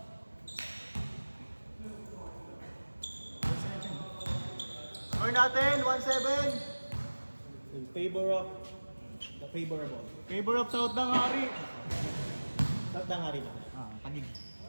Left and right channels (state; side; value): inverted; both; correlation -1.00